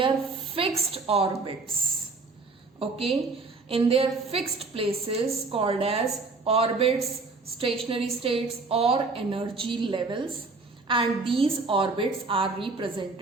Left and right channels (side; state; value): left; quieter; 3.9 dB